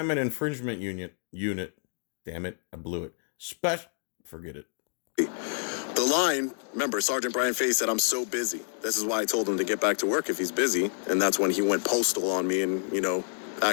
infringement unit. Damn it, I blew it. Forget it. The line, remember, Sergeant Brian Fahey said, "I'm so busy." This is why I told him to get back to work if he's busy. And that's when he went postal on me and,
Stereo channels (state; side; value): silent; right; 59 dB below the other